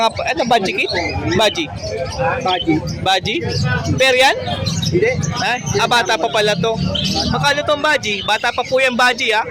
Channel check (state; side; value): identical; both; correlation 1.00